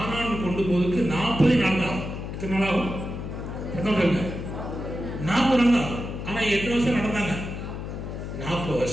கொண்டு போவதற்கு 40 நாள் தான். எத்தனை நாள் ஆகும்? 40 நாள் ஆகும். ஆனா எத்தனை வருஷம் நடந்தாங்க? 40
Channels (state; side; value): noise; left; hum, 7 dB below the sound